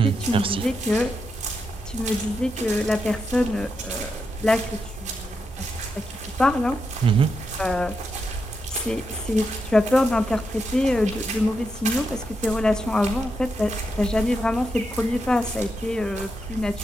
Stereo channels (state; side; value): normal; both; correlation 0.84